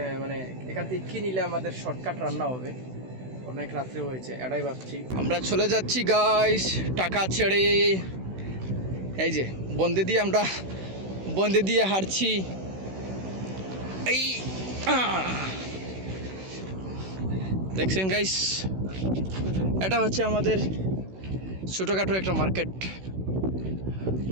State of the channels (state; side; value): late; left; 16 ms